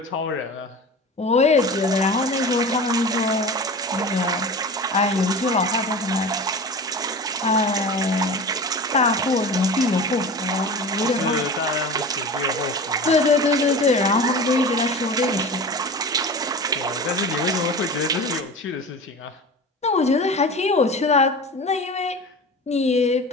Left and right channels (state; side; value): normal; both; correlation 0.33